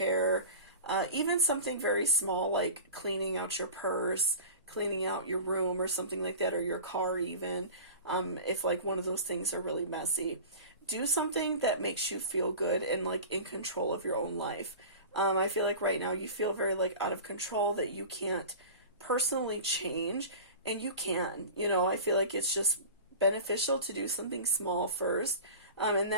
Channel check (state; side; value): inverted; both; correlation -0.35